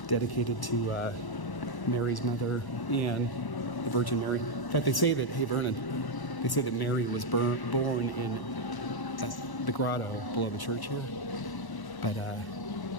dedicated to Mary's mother and the Virgin Mary. In fact, they say that, hey Vernon, they say that Mary was born in the grotto below the church here. But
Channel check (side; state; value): right; late; 1.1 ms